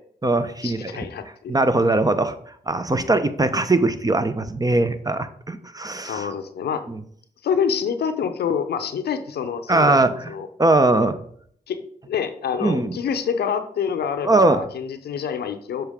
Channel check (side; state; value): both; normal; correlation 0.54